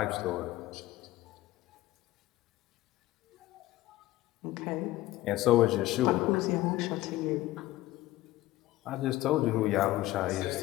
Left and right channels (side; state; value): right; quieter; 16.8 dB